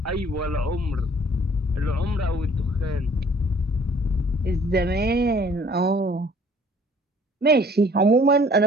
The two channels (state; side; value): normal; both; correlation 0.56